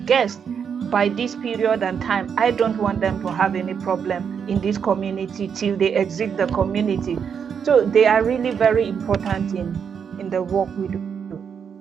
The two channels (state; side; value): quieter; left; 7.1 dB